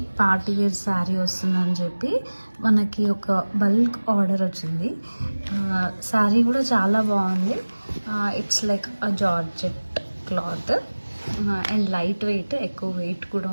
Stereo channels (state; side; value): inverted; both; correlation -1.00